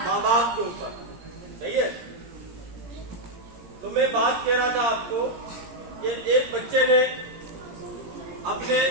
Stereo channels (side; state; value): left; late; 17 ms